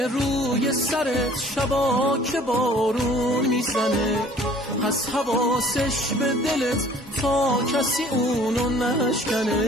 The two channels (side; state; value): both; normal; correlation 0.52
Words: روی سرت شبا که بارون میزنه، پس حواسش به دلت تا کسی اونو